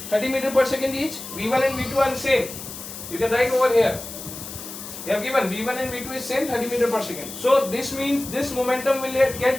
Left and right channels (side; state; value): left; noise; hiss, 11 dB below the sound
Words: 30 meters per second each. V1 and V2 are same. You can write over here. They have given V1 and V2 is same, 30 meters per second. So this means this momentum will